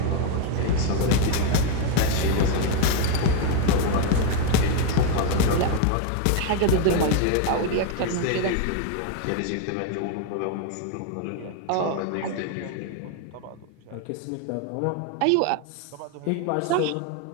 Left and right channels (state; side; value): different; both; correlation 0.01